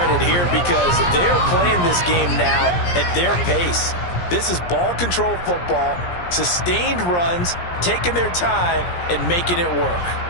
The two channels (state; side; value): late; right; 17 ms